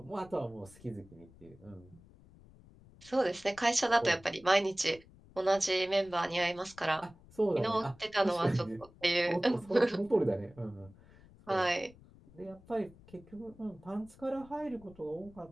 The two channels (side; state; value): left; noise; rumble, 24 dB below the sound